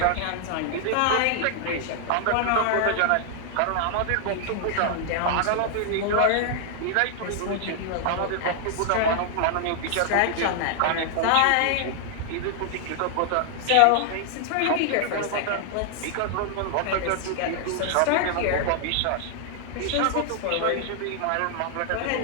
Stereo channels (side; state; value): both; different; correlation 0.00